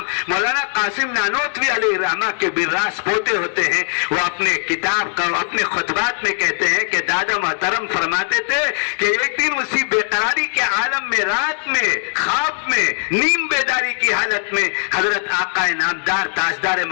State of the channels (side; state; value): right; silent; digital silence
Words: مولانا قاسم نانوتوی علیہ الرحمہ کے براس پوتے ہوتے ہیں، وہ اپنے کتاب کا اپنے خطبات میں کہتے ہیں کہ دادا محترم فرماتے تھے کہ ایک دن اسی بے قراری کے عالم میں، رات میں، خواب میں، نیم بیداری کی حالت میں حضرت آقا نامدار تاجدار